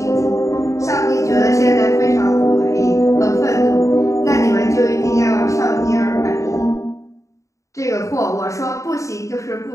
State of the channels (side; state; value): right; late; 0.15 ms